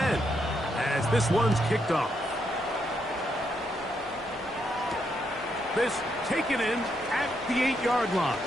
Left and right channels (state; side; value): normal; both; correlation 0.78